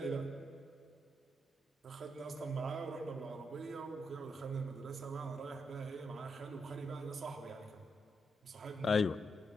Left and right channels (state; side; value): normal; both; correlation 0.82